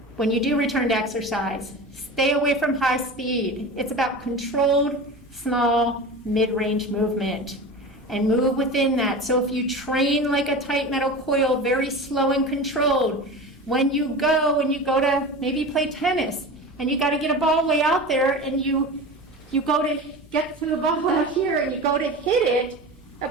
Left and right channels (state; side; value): normal; both; correlation 0.31